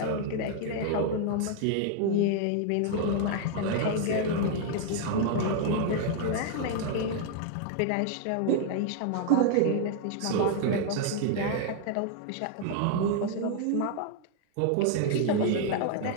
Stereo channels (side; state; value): both; different; correlation 0.00